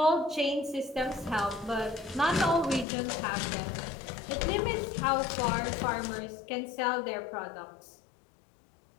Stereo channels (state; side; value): drops out; right; at 2.9 s